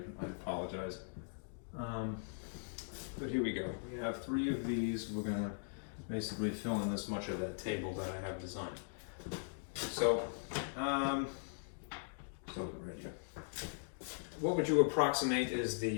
I apologize. But here we go. We have 3 of these. We're going to basically fill in this much of that table that I have designed. So, right here. What would you approximate is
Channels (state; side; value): silent; right; digital silence